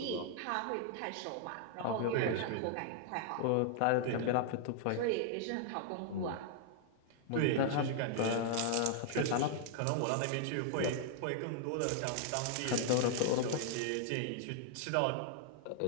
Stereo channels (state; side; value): different; both; correlation 0.00